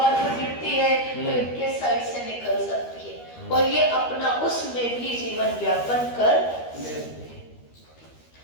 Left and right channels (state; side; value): late; right; 13 ms